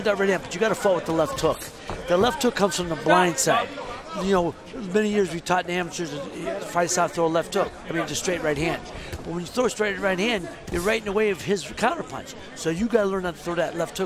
that right hand, but you got to fight with the left hook. The left hook comes from the blind side. You know, many years we taught the amateurs to fight out, throw a left hook. I mean, just straight right hand. But when you throw a straight right hand, you're right in the way of his counterpunch. So you got to learn how to throw that left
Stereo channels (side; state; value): both; identical; correlation 1.00